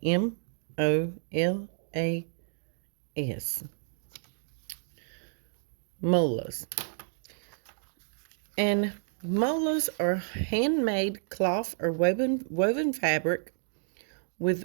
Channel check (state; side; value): silent; left; digital silence